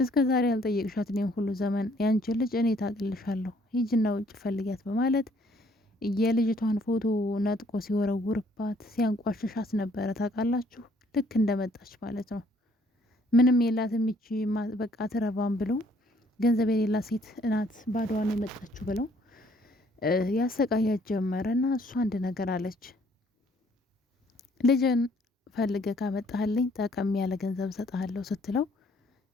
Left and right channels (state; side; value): normal; both; correlation 0.63